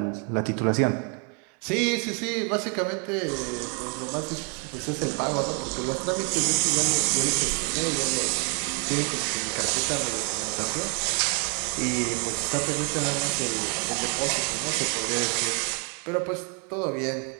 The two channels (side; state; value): left; quieter; 37.6 dB